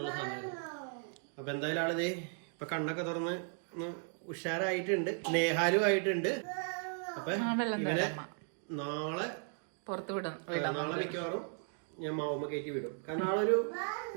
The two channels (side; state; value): left; silent; 54 dB below the other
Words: സമയമായിരുന്നു. അപ്പൊ എന്തായാലും ആളിതേ ഇപ്പൊ കണ്ണൊക്കെ തുറന്ന് ഉഷാറായിട്ടുണ്ട്. നേഹാലും ആയിട്ടുണ്ട്. അപ്പൊ ഇവനെ നാളെ പുറത്തു വിടും. നാളെ മിക്കവാറും ഞാൻ മാവുമ്മ കയറ്റി വിടും. കാരണം ആളൊരു